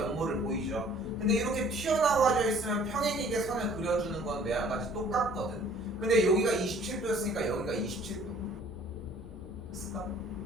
보이죠. 근데 이렇게 튀어나와져 있으면 평행이게 선을 그려주는 건 매한가지 똑같거든. 근데 여기가 27도였으니까 여기가 27도. 됐을까?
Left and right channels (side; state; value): both; normal; correlation 0.55